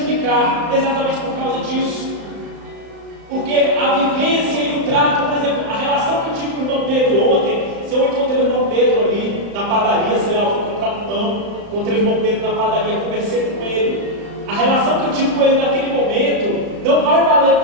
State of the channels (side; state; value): left; late; 35 ms